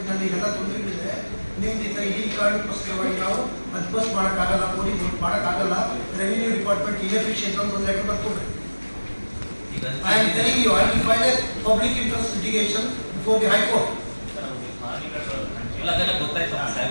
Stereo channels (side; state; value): both; inverted; correlation -1.00